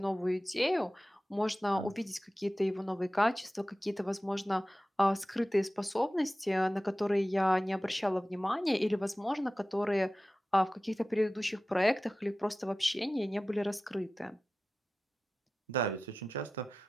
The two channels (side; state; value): both; normal; correlation 0.95